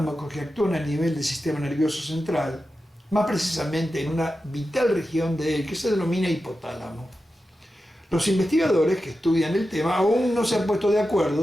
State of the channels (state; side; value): normal; both; correlation 0.91